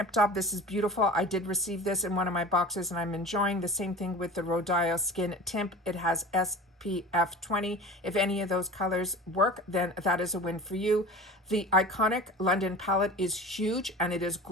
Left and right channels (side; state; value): both; normal; correlation 0.37